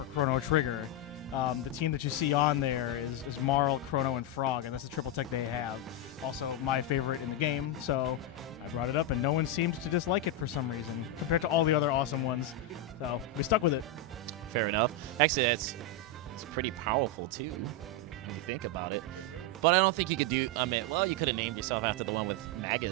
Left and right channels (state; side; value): normal; both; correlation 0.03